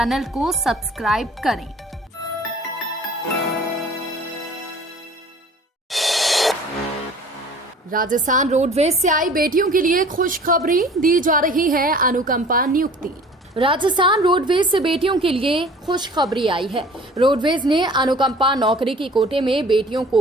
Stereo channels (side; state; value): both; normal; correlation 0.47